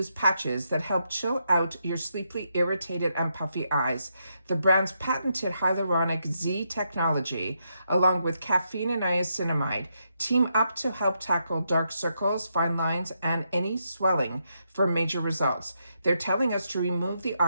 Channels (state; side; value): inverted; both; correlation -0.81